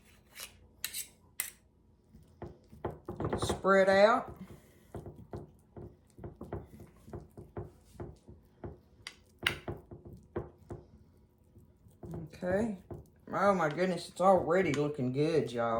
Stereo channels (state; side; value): identical; both; correlation 1.00